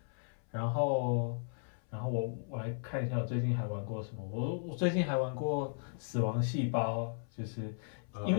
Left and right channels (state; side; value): silent; right; 54 dB below the other